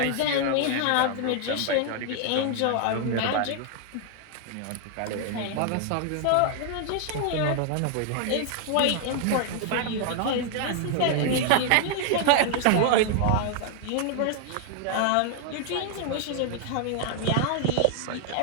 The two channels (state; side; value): different; both; correlation 0.00